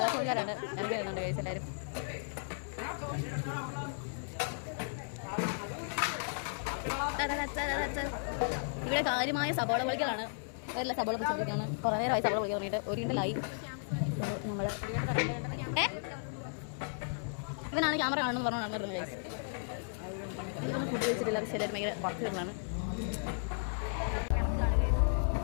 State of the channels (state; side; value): silent; right; 55 dB below the other